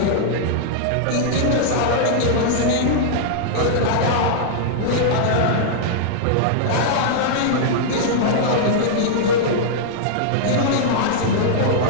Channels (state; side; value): different; both; correlation -0.01